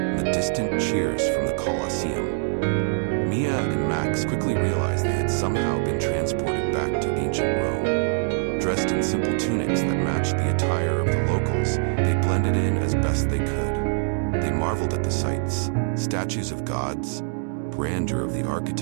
the distant cheers from the Colosseum. Mia and Max quickly realized they had somehow been transported back to ancient Rome. Dressed in simple tunics that matched the attire of the locals, they blended in as best they could. They marveled at the sights, statues of gods, grandeur of the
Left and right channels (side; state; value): left; silent; digital silence